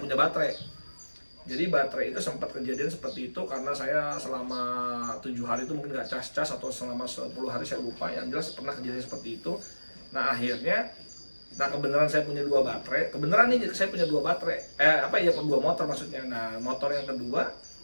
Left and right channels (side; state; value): both; inverted; correlation -1.00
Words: baterai. Jadi baterai itu sempat kejadian seperti itu karena saya selama 7 hari itu mungkin nggak cas-cas, atau selama 10 hari saya lupa, yang jelas pernah kejadian seperti itu. Nah akhirnya, kebenaran saya punya 2 baterai, saya punya 2 baterai, 2 motor maksudnya. Nah motor yang kedua